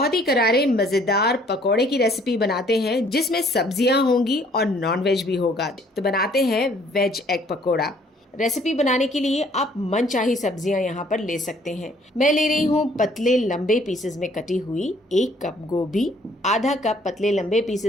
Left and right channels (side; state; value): both; normal; correlation 0.60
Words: ही करारे मज़ेदार पकोड़े की रेसिपी बनाते हैं जिसमें सब्जियां होंगी और नॉनवेज भी होगा। तो बनाते हैं वेज एग पकोड़ा। रेसिपी बनाने के लिए आप मनचाही सब्जियां यहाँ पर ले सकते हैं। मैं ले रही हूँ पतले लंबे पीसेस में कटी हुई 1 कप गोभी, आधा कप पतले लंबे